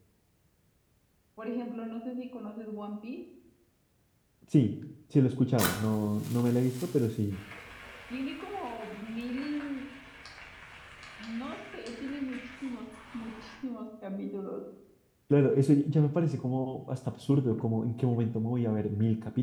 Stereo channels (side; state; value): both; identical; correlation 1.00